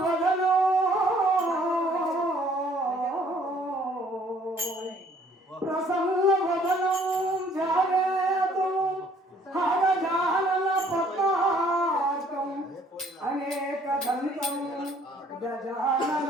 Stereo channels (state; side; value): normal; both; correlation 0.60